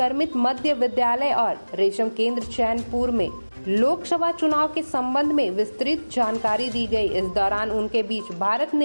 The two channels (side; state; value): both; inverted; correlation -1.00